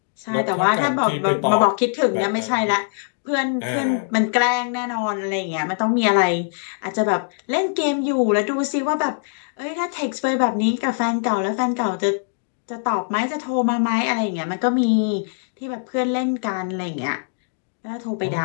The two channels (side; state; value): right; silent; digital silence